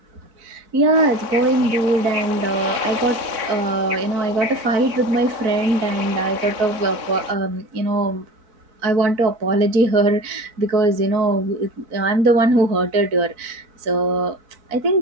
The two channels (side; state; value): left; late; 4.0 ms